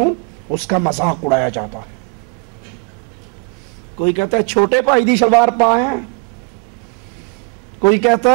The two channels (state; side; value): quieter; left; 34.6 dB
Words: اس کا مذاق اڑایا جاتا ہے۔ کوئی کہتا ہے چھوٹے پائی دی شلوار پائیں، کوئی کہتا